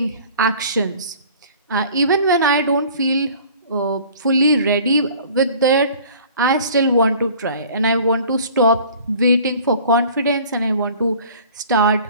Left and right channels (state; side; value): inverted; both; correlation -0.48